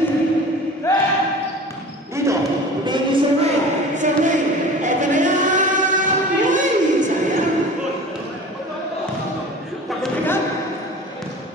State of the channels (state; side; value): normal; both; correlation 0.39